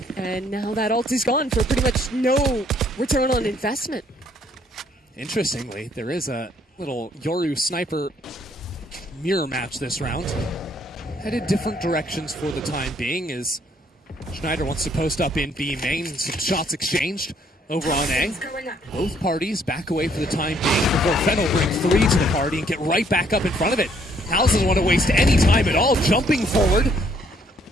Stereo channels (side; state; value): both; normal; correlation 0.66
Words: And now that ult is gone for pretty much no return on investment. Interestingly, there is a little Yoru sniper mirror match this round. Headed different directions for the time being as Schneider wants to post up in B main. Some shots exchanged over on A. Both parties back away for the time being before Fennel brings 3 to the party and get right back up in front of it. House doesn't want to waste any time at all, jumping forward.